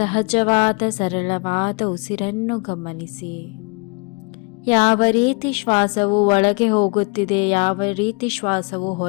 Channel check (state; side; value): quieter; right; 31.2 dB